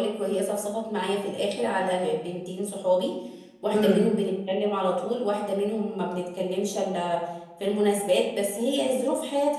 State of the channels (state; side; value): identical; both; correlation 1.00